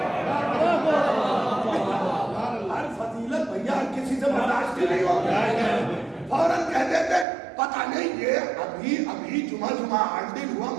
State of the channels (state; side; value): drops out; left; at 7.2 s